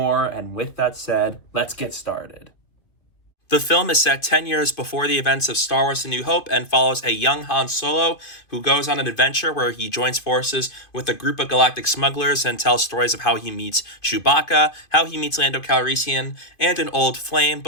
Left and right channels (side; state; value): right; late; 2.5 ms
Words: And with that said, let's get started. The film is set 10 years before the events of Star Wars A New Hope and follows a young Han Solo who goes on an adventure where he joins forces with a group of galactic smugglers and tells stories of how he meets Chewbacca, how he meets Lando Calrissian, and an old flame